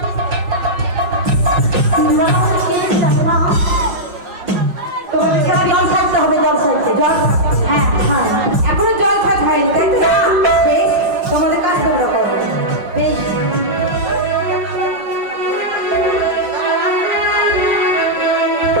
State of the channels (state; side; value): late; left; 5.2 ms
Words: তোমার বিশাল জল খাইতে হবে, জল খাইতে জল। হ্যাঁ হ্যাঁ এখনো জল খাইতে হয়নি তাই তো? বেশ তোমাদের কাজ তোমরা করো বেশ।